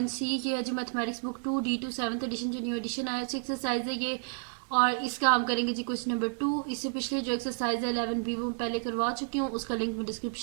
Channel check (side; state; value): left; silent; 55 dB below the other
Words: ये है जो mathematics book 2D2 7th edition जो न्यू एडिशन आया है एक्सरसाइज है ये। और इसका हम करेंगे जी क्वेश्चन नंबर 2। इससे पिछले जो एक्सरसाइज है 11B वो पहले करवा चुकी हूँ, उसका लिंक मैं